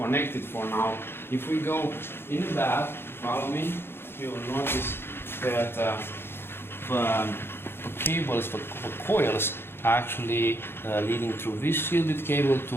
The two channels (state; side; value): late; right; 0.11 ms